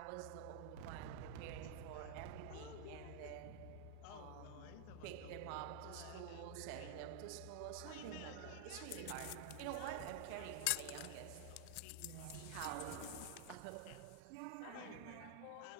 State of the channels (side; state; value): both; different; correlation 0.00